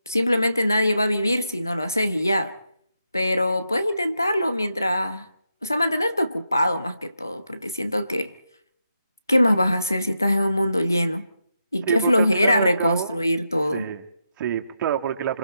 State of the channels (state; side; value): inverted; both; correlation -0.85